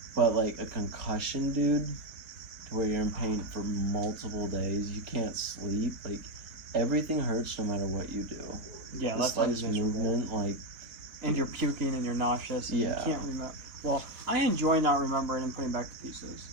but like a concussion, dude, to where you're in pain for multiple days, you can't sleep. Like everything hurts no matter what you do. Yeah, the that's slightest movement, like. And you're puking and you're nauseous and you can't remember. Well, I enjoy not remembering and putting back the pieces.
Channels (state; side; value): late; left; 4.0 ms